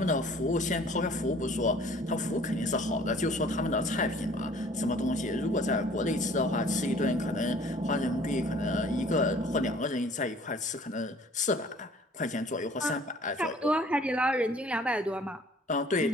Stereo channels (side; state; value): both; normal; correlation 0.53